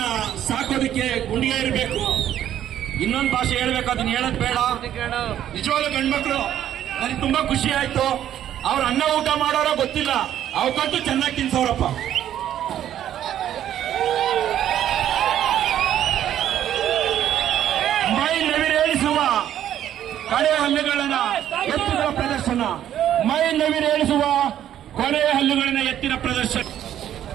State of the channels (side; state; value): left; quieter; 11.1 dB